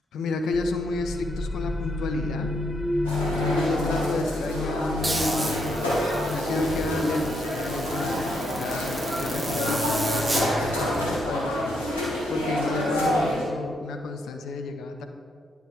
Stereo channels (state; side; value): normal; both; correlation 0.77